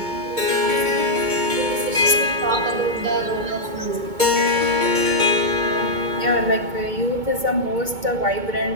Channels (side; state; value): left; late; 2.2 ms